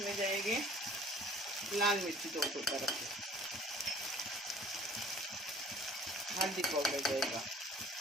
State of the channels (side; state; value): both; normal; correlation 0.52